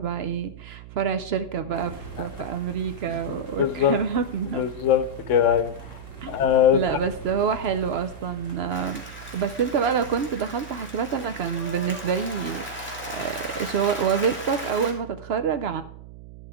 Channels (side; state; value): right; noise; hum, 16 dB below the sound